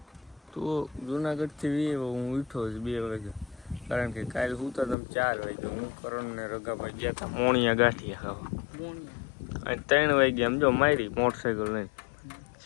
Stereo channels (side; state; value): right; drops out; at 5.0 s